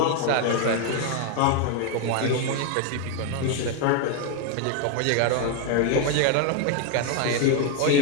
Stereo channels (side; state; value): both; different; correlation 0.01